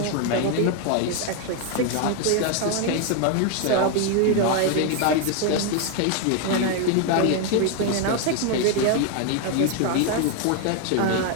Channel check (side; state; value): both; different; correlation 0.01